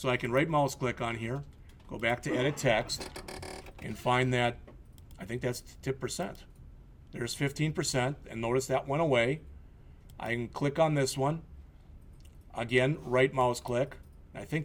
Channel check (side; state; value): both; identical; correlation 1.00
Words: I can right mouse click on here, go back to edit text, and find that, I think that's tip percent. There's 15%, and notice that went away. I can click on this one. Again, right mouse click. I